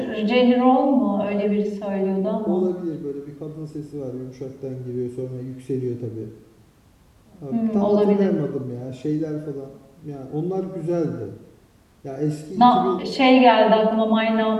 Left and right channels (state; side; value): identical; both; correlation 1.00